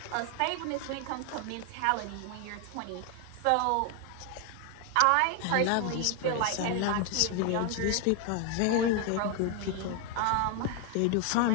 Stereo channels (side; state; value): both; different; correlation 0.01